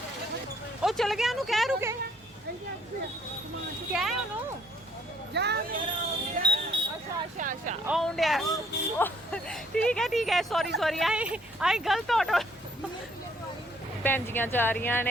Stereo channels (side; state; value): both; normal; correlation 0.64